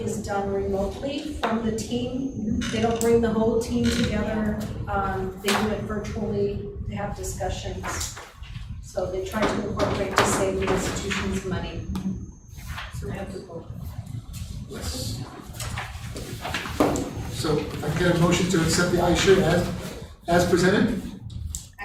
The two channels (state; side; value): identical; both; correlation 1.00